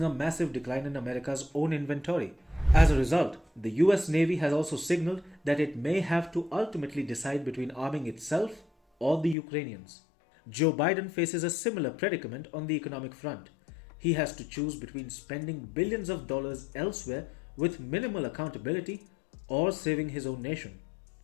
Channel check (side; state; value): right; drops out; at 9.3 s